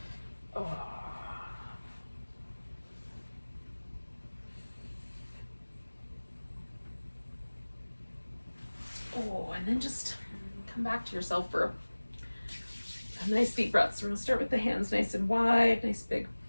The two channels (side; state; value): both; inverted; correlation -1.00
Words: Oh. And then just come back to yourself for a nice deep breath. So we're gonna start with the hands nice and wide, nice big